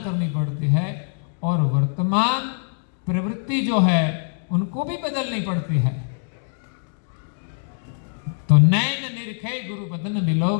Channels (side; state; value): right; silent; 63 dB below the other